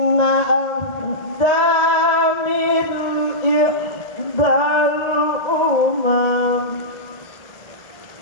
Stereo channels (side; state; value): right; late; 1.8 ms